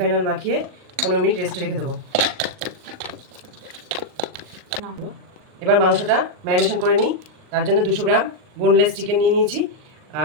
অয়েল মাখিয়ে 15 মিনিট রেস্টে রেখে দেবো। এবার মাংসটা ম্যারিনেশন করে নিই। তার জন্য 200 গ্রাম বোনলেস চিকেন নিয়ে নিয়েছি।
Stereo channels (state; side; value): late; left; 39 ms